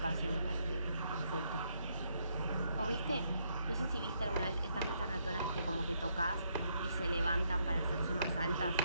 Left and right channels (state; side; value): inverted; both; correlation -0.74